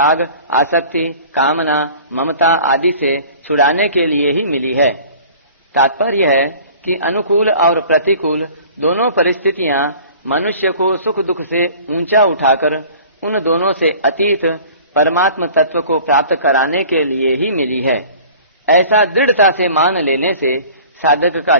आसक्ति, कामना, ममता आदि से छुड़ाने के लिए ही मिली है। तात्पर्य है कि अनुकूल और प्रतिकूल दोनों परिस्थितियां मनुष्य को सुख दुख से ऊंचा उठाकर उन दोनों से अतीत परमात्म तत्व को प्राप्त कराने के लिए ही मिली है। ऐसा दृढ़ता से मान लेने से साधक का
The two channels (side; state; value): both; inverted; correlation -0.46